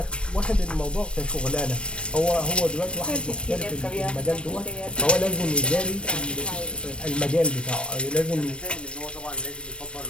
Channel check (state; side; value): late; right; 0.058 ms